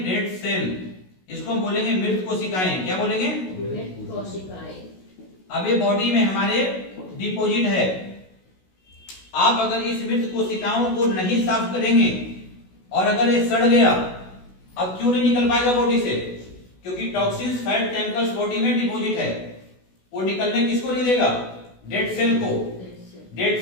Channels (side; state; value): right; late; 16 ms